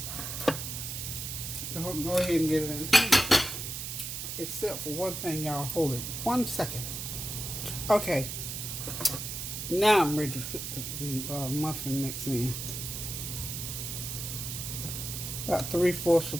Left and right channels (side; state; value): right; noise; hiss, 5 dB below the sound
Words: Go ahead and get it in. Except for one thing, y'all. Hold it 1 second. Okay. Now I'm ready to put the muffin mix in. About 3/4 of